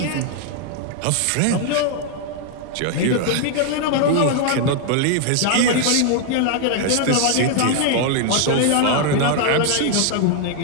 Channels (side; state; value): both; different; correlation 0.00